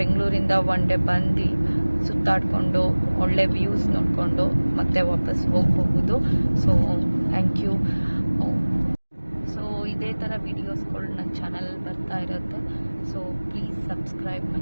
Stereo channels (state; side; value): inverted; both; correlation -1.00